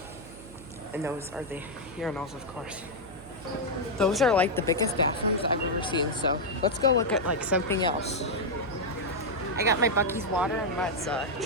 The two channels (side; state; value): right; noise; hum, 18 dB below the sound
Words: And those are the urinals, of course. Those are like the biggest bathrooms I've ever seen. So let's go look at like something else. I got my Buc-ee's water and let's